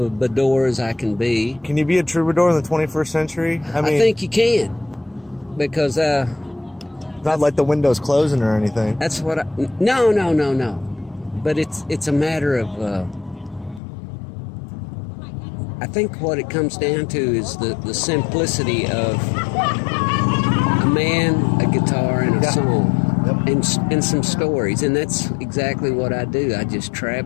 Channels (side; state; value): right; drops out; at 13.8 s